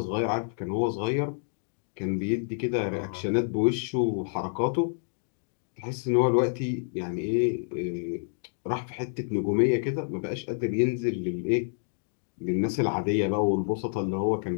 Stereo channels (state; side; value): silent; right; digital silence